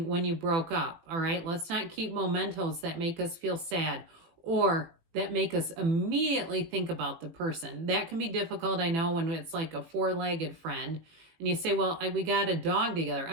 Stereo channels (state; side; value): late; left; 18 ms